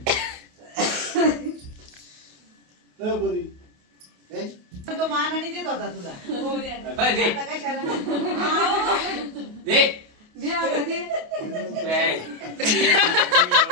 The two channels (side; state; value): left; late; 28 ms